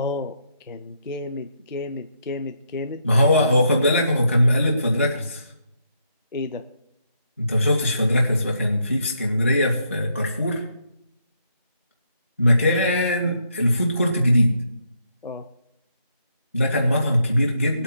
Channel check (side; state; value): both; inverted; correlation -0.77